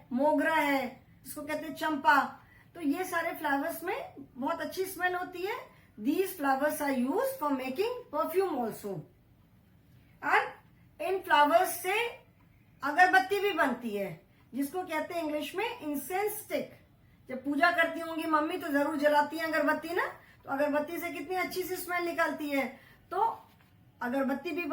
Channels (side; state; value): both; identical; correlation 1.00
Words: मोगरा है, जिसको कहते हैं चंपा, तो ये सारे फ्लावर्स में बहुत अच्छी स्मेल होती है। These flowers are use for making perfume also. And इन फ्लावर्स से अगरबत्ती भी बनती है, जिसको कहते हैं इंग्लिश में इंसेंस स्टिक। जब पूजा करती होंगी मम्मी तो जरूर जलाती है अगरबत्ती ना, तो अगरबत्ती से कितनी अच्छी सी स्मेल निकलती है, तो अगरबत्ती भी